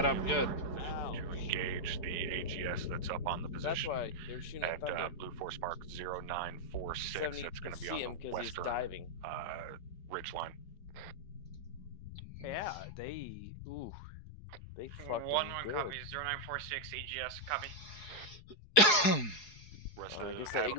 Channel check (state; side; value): late; right; 4.8 ms